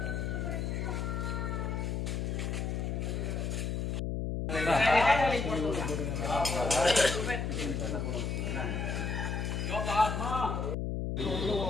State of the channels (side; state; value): left; noise; hum, 1 dB below the sound